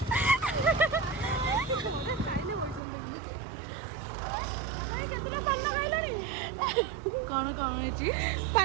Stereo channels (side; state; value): left; drops out; at 2.8 s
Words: କଣ କଣ ହେଇଛି?